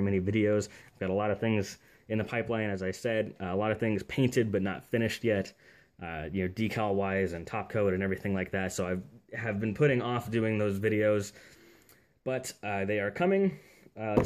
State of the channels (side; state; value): both; identical; correlation 1.00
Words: many videos. I've got a lot of things in the pipeline, as I said. A lot of things painted but not finished yet, decal-wise and top coat and everything like that. So I have been putting off doing those videos, but they are coming.